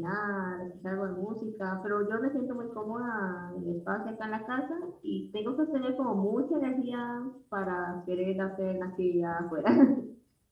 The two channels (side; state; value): both; identical; correlation 1.00